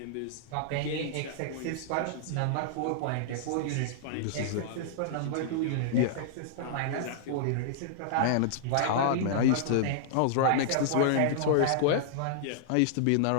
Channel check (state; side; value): different; both; correlation -0.01